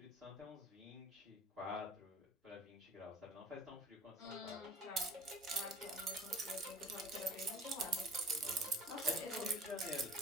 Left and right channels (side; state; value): both; normal; correlation 0.44